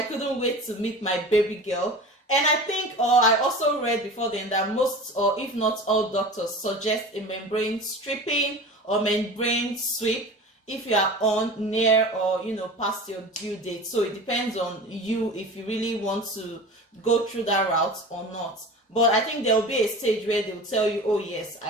couldn't wait to meet my baby girl. And I think, or I also read before then that most, or if not all doctors suggest a membrane stripping or membrane sweep if you are on near or, past your due date. So it depends on you if you really want to go through that route or not. But I think there will be a stage where they will tell you, oh yes,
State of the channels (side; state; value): both; normal; correlation 0.35